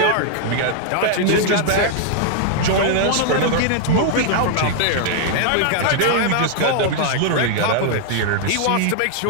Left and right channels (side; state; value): both; different; correlation -0.01